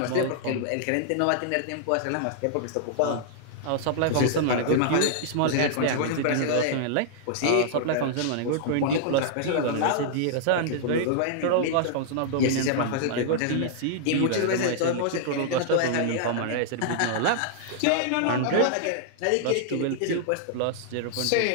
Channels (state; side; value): different; both; correlation -0.01